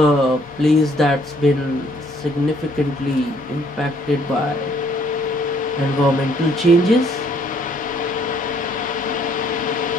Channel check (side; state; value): both; normal; correlation 0.64